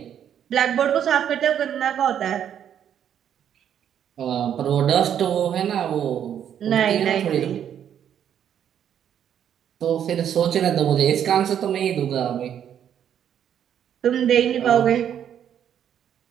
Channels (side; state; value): left; quieter; 9.4 dB